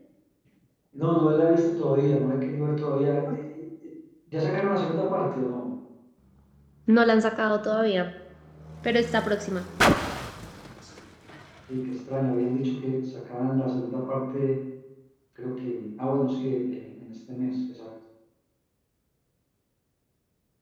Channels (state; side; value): identical; both; correlation 1.00